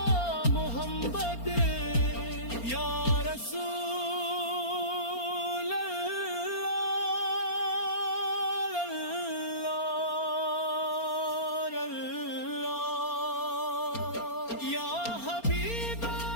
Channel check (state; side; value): late; right; 4.3 ms